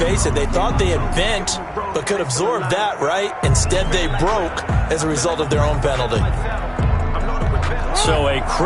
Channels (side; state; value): both; identical; correlation 1.00